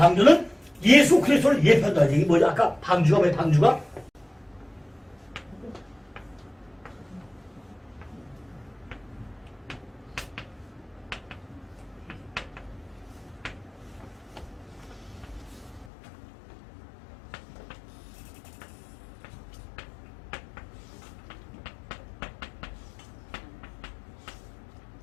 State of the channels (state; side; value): drops out; right; at 15.9 s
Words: 예수 그리스도를 예표한다. 이게 뭐죠? 아까 방주가 뭐예요? 방주가?